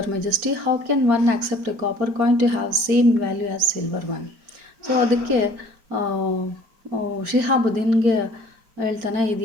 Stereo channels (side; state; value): left; late; 4.9 ms